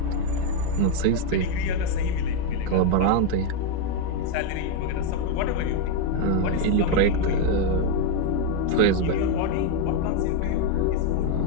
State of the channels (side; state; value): both; different; correlation 0.02